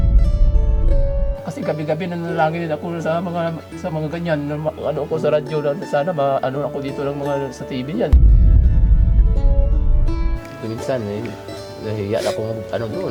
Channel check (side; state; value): both; identical; correlation 1.00